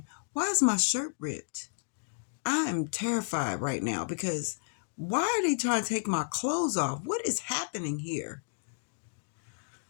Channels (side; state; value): right; silent; digital silence